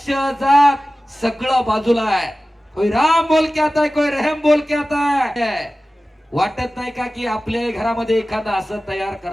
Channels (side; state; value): both; normal; correlation 0.96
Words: जात सगळं बाजूला आहे. कोई राम बोल के आता है, कोई रहम बोल के आता है. वाटत नाही का की आपल्या घरामध्ये एखादं असं तयार